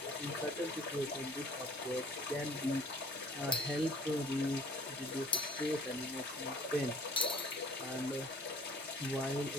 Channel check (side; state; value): both; normal; correlation 0.51